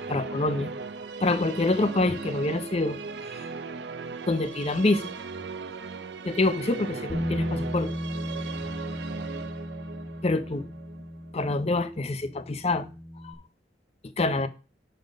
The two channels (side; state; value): both; normal; correlation 0.55